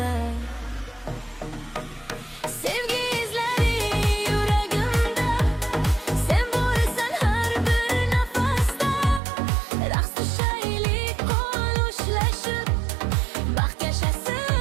Sevgi izlari yuragimda, sen borsan har bir nafasda. Raqs tushaylik qo'l ushlashib, baxt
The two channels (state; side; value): drops out; left; at 9.2 s